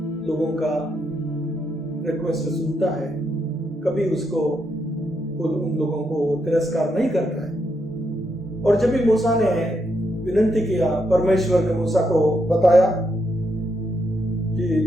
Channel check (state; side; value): normal; both; correlation 0.79